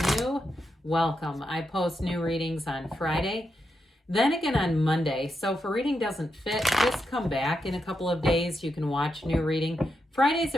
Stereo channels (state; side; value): normal; both; correlation 0.85